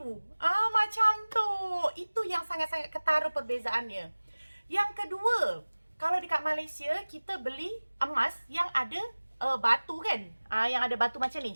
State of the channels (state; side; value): inverted; both; correlation -1.00